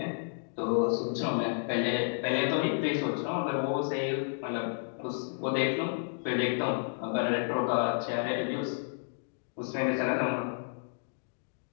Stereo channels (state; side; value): silent; right; digital silence